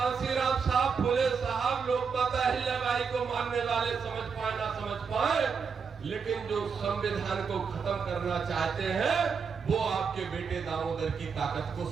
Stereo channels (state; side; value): quieter; left; 5.8 dB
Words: साहब, फुले साहब, लोकमाता अहिल्याबाई को मानने वाले समझ पाए ना समझ पाए, लेकिन जो संविधान को खत्म करना चाहते हैं वो आपके बेटे दामोदर की ताकत को